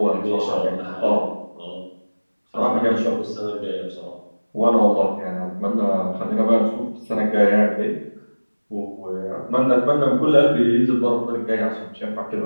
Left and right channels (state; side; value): inverted; both; correlation -1.00